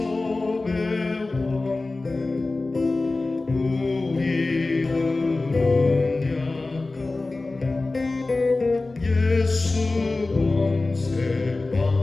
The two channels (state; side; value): quieter; right; 3.3 dB